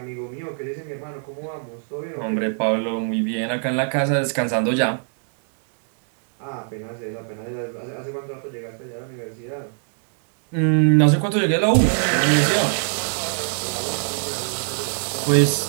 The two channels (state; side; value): silent; left; digital silence